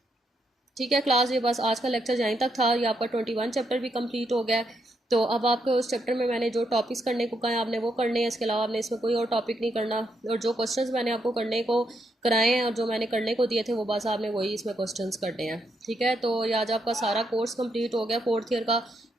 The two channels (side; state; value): both; normal; correlation 0.79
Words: ठीक है क्लास, ये बस आज का लेक्चर यहीं तक था। ये आपका 21 चैप्टर भी कंप्लीट हो गया है। तो अब आपको उस चैप्टर में मैंने जो टॉपिक्स करने को कहा है आपने वो करने हैं, इसके अलावा आपने इसमें कोई और टॉपिक नहीं करना, और जो क्वेश्चंस मैंने आपको करने को कराए हैं और जो मैंने करने को दिए थे वो बस आपने वही इसमें क्वेश्चंस करने हैं। ठीक है, तो ये आज आपका सारा कोर्स कंप्लीट हो गया 4th ईयर का।